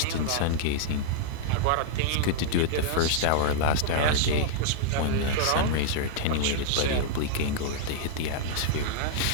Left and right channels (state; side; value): different; both; correlation -0.01